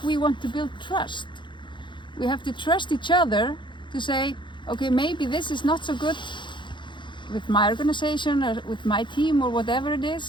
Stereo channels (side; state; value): right; late; 0.23 ms